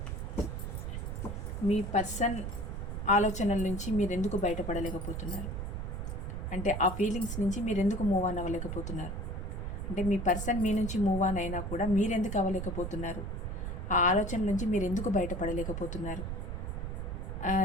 మీ పర్సన్ ఆలోచనల నుంచి మీరు ఎందుకు బయటపడలేకపోతున్నారు, అంటే ఆ ఫీలింగ్స్ నుంచి మీరు ఎందుకు మూవ్ ఆన్ అవ్వలేకపోతున్నారు, అంటే మీ పర్సన్ మీ నుంచి మూవ్ ఆన్ అయినా కూడా మీరు ఎందుకు అవ్వలేకపోతున్నారు, ఆ ఆలోచన నుంచి మీరు ఎందుకు బయటపడలేకపోతున్నారు,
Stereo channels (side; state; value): right; noise; rumble, 4 dB below the sound